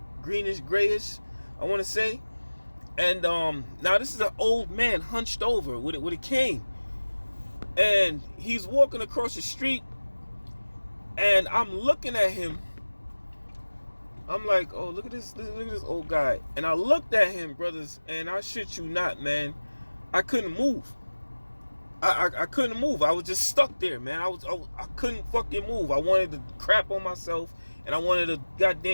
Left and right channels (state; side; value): inverted; both; correlation -1.00